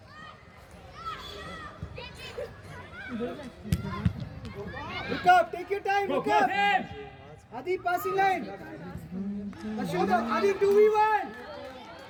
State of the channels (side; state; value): both; identical; correlation 1.00